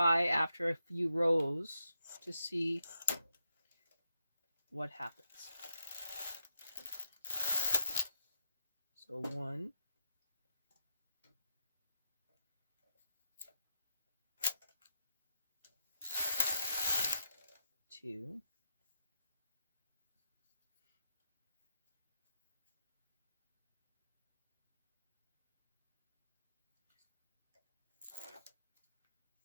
after a few rows to see what happens. So 1, 2,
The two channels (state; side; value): inverted; both; correlation -0.82